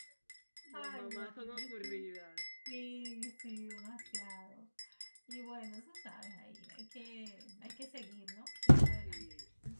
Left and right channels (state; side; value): inverted; both; correlation -1.00